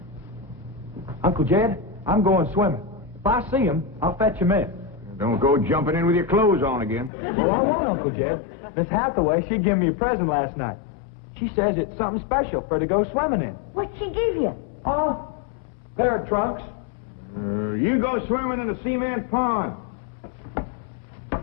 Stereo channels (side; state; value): right; drops out; at 7.1 s